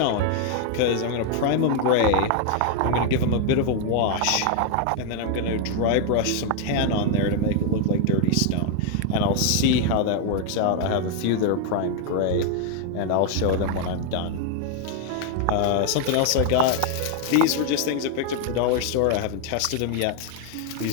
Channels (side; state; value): both; different; correlation 0.01